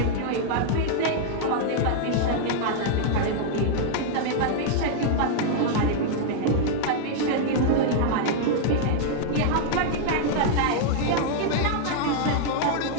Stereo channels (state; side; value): different; both; correlation -0.01